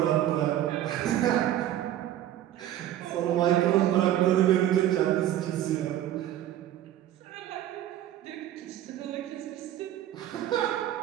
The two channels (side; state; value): left; quieter; 12.3 dB